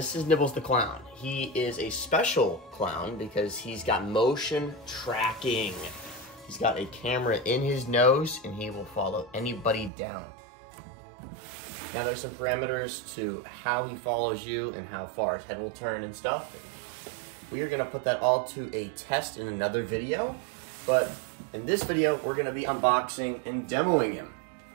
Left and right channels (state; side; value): drops out; left; at 9.9 s